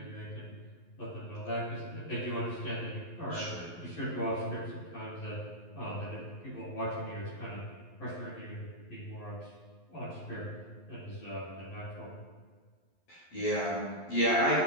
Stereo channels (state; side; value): late; right; 11 ms